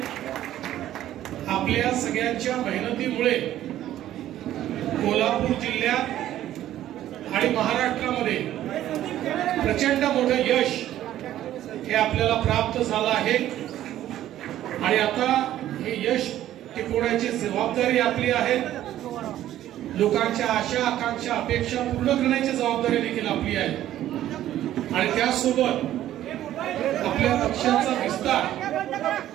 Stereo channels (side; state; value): left; quieter; 12.8 dB